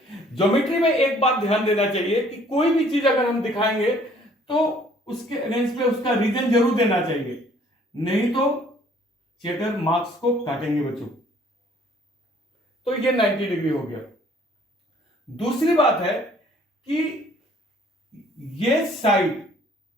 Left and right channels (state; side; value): normal; both; correlation 0.58